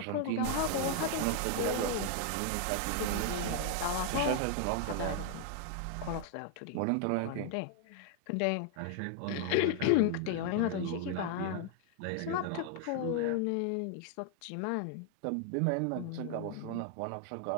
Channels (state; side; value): different; both; correlation 0.00